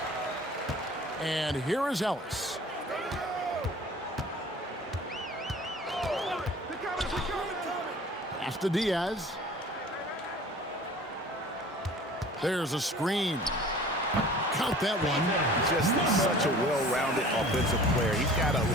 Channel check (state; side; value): normal; both; correlation 0.45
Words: And here is Ellis. Pass to Diaz. There's a screen. Count that one. Just such a well-rounded offensive player. He's got a